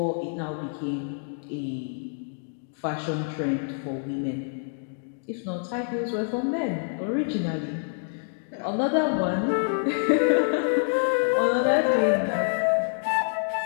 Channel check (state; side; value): silent; right; digital silence